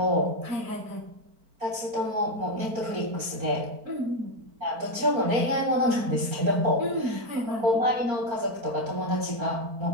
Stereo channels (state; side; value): late; left; 4.5 ms